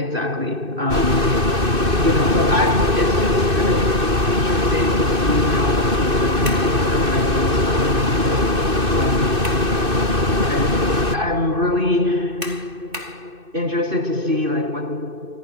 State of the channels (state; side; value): late; left; 2.6 ms